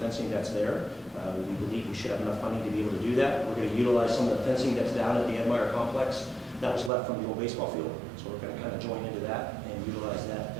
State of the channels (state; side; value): drops out; left; at 6.9 s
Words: fencing that's there. We believe we should have enough funding to be able to do that. We're going to utilize some of the fencing that's down at the Edmire complex that was left from the old baseball field. So we're going to kind of join into that and utilize that